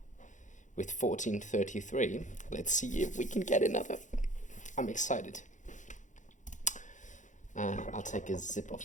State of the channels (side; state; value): right; late; 0.36 ms